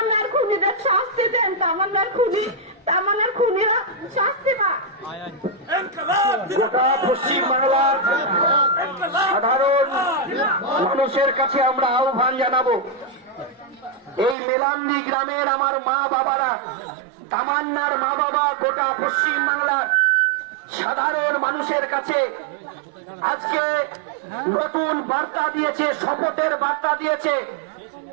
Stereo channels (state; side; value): drops out; left; at 14.4 s